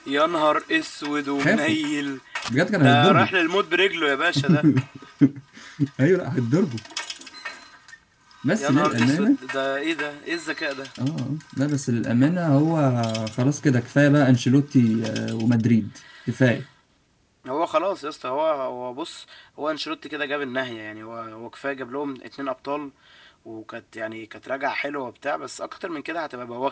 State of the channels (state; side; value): identical; both; correlation 1.00